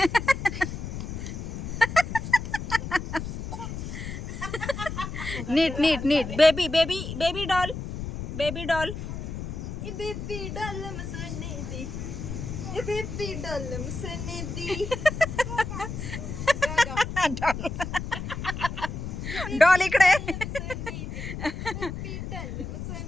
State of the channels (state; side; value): noise; left; rumble, 6 dB below the sound